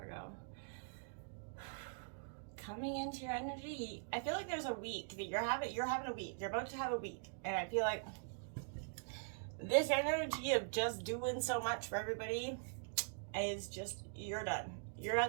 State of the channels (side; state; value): left; silent; digital silence